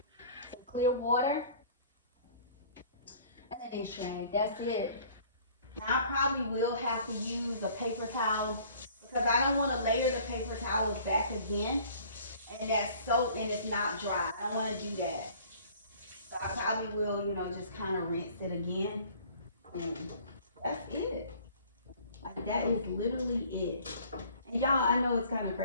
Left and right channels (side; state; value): both; inverted; correlation -0.52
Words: Some clear water and a dish rag. That's it. Now I probably will have to use a paper towel because I don't want to layer the paper towels back again and that's soap and it's not dry. I don't want to do that. So I probably will, just kind of rinse it again. And that's it. Like that is literally it. And y'all, I know it's kind of